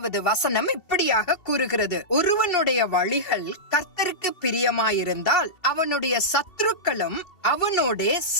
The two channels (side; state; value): right; late; 2.7 ms